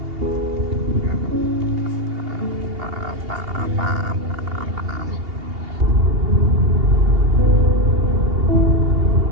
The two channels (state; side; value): late; left; 2.8 ms